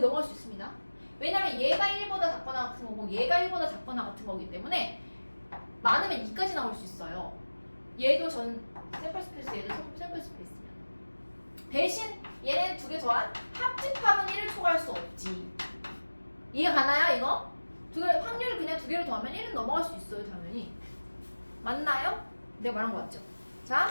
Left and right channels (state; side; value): inverted; both; correlation -1.00